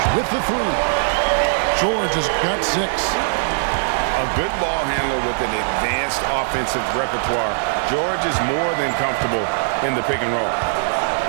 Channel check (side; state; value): left; silent; digital silence